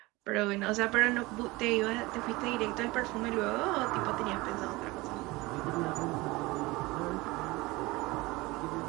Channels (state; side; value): quieter; left; 21.8 dB